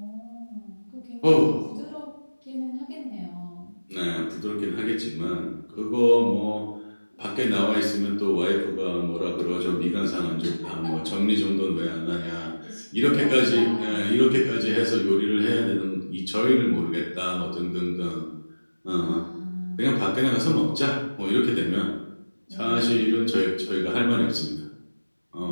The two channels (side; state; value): both; inverted; correlation -1.00